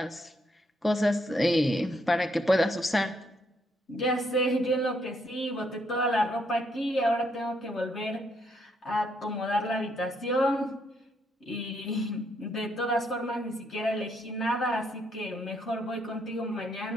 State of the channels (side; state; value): both; normal; correlation 0.74